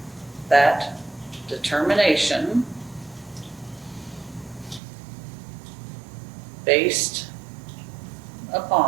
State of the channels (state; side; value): drops out; left; at 4.8 s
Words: that determination based